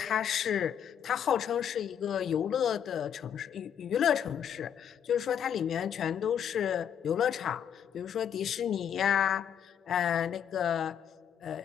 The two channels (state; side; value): quieter; right; 8.8 dB